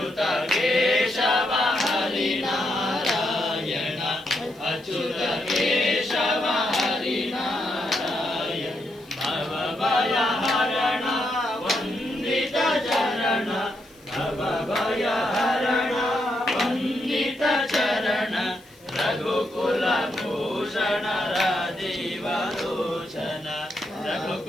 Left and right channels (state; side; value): noise; left; hiss, 28 dB below the sound